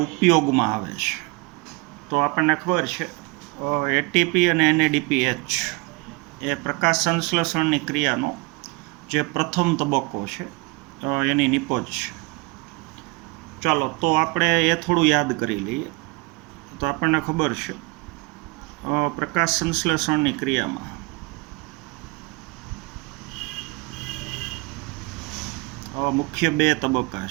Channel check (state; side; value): quieter; left; 26.4 dB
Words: ઉપયોગમાં આવે છે? તો આપણને ખબર છે એટીપી અને એનએડીપીએચ એ પ્રકાશ સંશ્લેષણની ક્રિયાનો જે પ્રથમ તબક્કો છે એની નિપજ છે. ચાલો, તો આપણે એ થોડું યાદ કરી લઈએ. તો આપણને ખબર છે પ્રકાશ સંશ્લેષણની ક્રિયામાં મુખ્ય બે તબક્કા